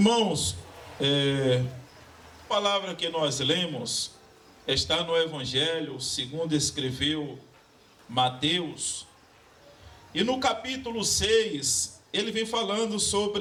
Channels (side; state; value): both; identical; correlation 1.00